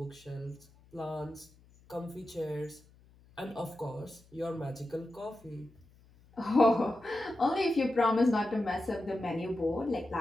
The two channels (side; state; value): left; noise; hum, 27 dB below the sound